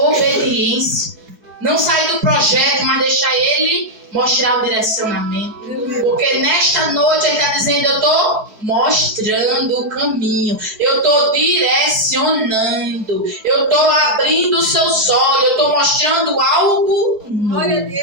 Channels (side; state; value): left; late; 4.7 ms